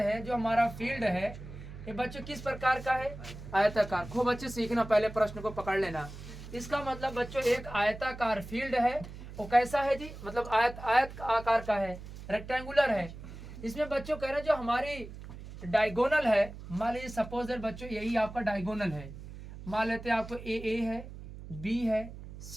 जो हमारा फील्ड है, ये बच्चों किस प्रकार का है? आयताकार। खूब बच्चे सीखना, पहले प्रश्न को पकड़ लेना। इसका मतलब बच्चों एक आयताकार फील्ड है, वो कैसा है जी? मतलब आयत आकार का है, रेक्टेंगुलर है। इसमें बच्चों कह रहे हैं जो हमारी डायगोनल है, मान लीजिए सपोज बच्चों यही आपका डायगोनल है। मान लेते हैं आपको ए है, बी है,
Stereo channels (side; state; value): right; noise; hum, 13 dB below the sound